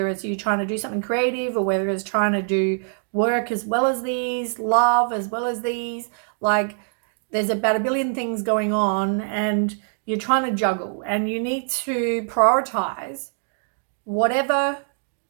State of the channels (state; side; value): silent; left; digital silence